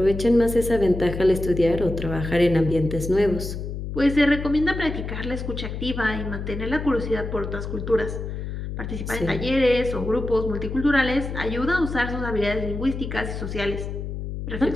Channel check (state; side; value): noise; left; hum, 6 dB below the sound